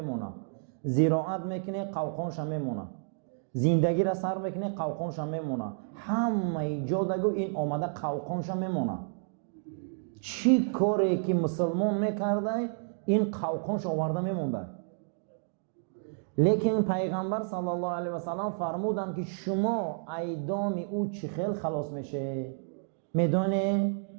زراعت میکنه قوقانش میمونه. زندگی را سر میکنه قوقانش میمونه. همه جا دگو این آمده قوقانش میمونه. چی کاری که مسلمان میکرده این قوقانش آورده میمونده. لیکن پیغمبر صلی الله علیه و سلم فرمودن که شما ای دام او چی خیل خلاص میشه؟ میدونه؟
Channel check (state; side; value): silent; left; digital silence